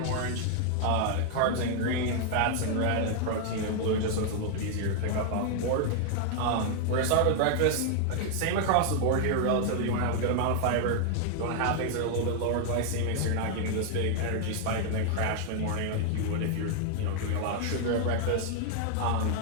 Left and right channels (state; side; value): different; both; correlation 0.00